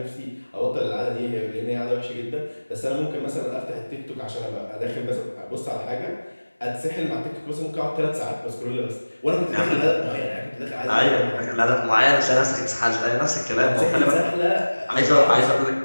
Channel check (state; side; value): inverted; both; correlation -1.00